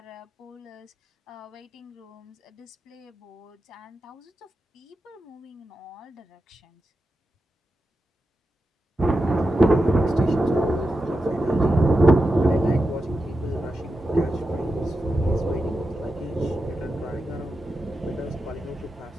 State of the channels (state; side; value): normal; both; correlation 0.89